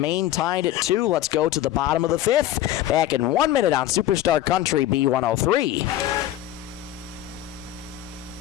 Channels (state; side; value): quieter; right; 13.3 dB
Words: tied at 2. Let's go to the bottom of the 5th. Back in 1 minute on Superstar Country B103.